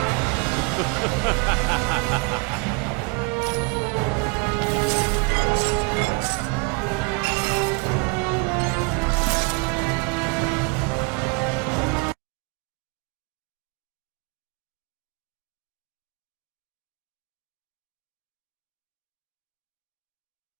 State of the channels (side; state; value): left; quieter; 30.6 dB